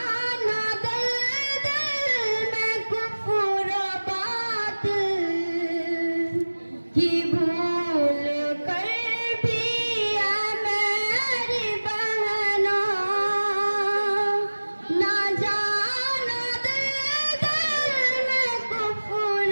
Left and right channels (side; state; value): both; inverted; correlation -1.00